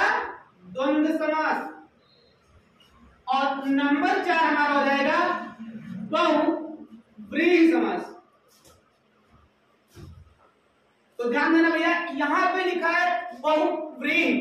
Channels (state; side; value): identical; both; correlation 1.00